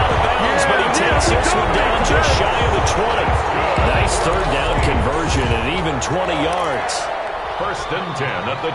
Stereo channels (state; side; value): identical; both; correlation 1.00